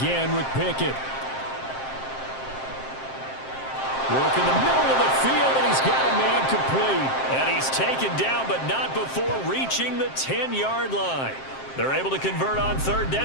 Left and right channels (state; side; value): late; right; 7.6 ms